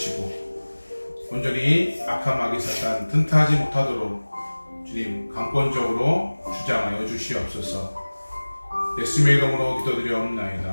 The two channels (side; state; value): both; inverted; correlation -1.00